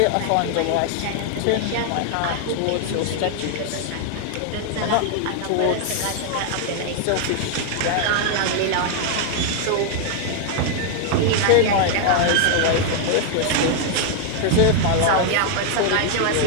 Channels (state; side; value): different; both; correlation 0.00